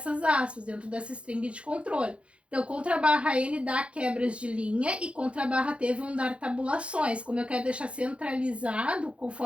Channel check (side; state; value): left; late; 0.060 ms